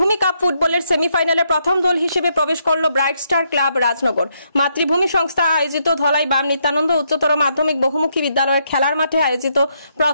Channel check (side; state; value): both; inverted; correlation -0.76